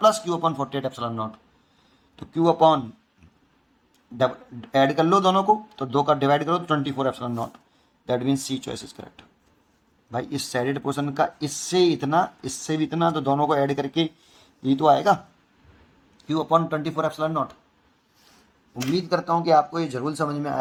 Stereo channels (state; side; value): identical; both; correlation 1.00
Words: Q/48 epsilon not, तो Q/ ऐड कर लो दोनों को, तो 2 का डिवाइड करो तो 24 epsilon naught. That means C choice is correct. भाई इस शेडेड पोर्शन का इससे इतना, इससे भी इतना, तो दोनों को ऐड करके ये तो आएगा Q/24 एप्सिलॉन नॉट। उम्मीद करता हूँ कि आपको ये जरूर समझ में